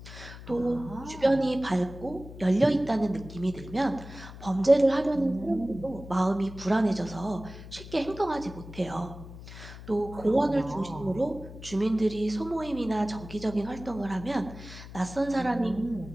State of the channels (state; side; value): noise; left; hum, 14 dB below the sound